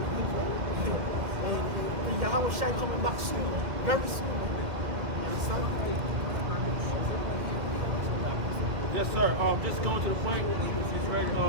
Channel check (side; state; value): left; late; 2.0 ms